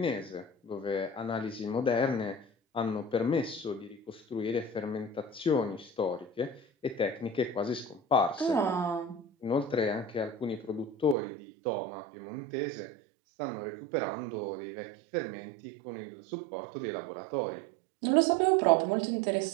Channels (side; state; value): left; drops out; at 11.2 s